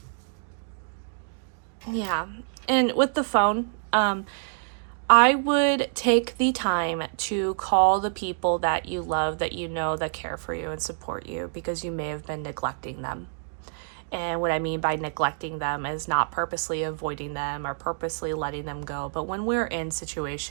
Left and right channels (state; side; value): silent; left; digital silence